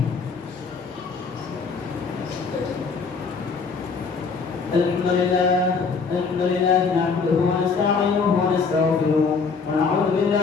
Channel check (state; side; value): quieter; right; 5.0 dB